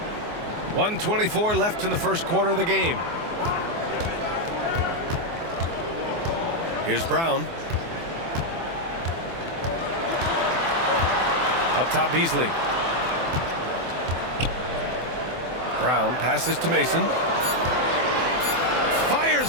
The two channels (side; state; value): left; late; 24 ms